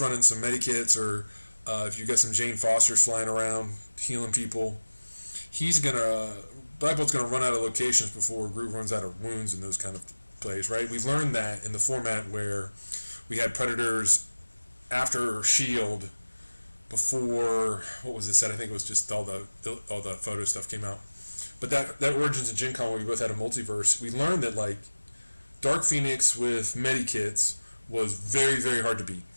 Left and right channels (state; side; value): inverted; both; correlation -1.00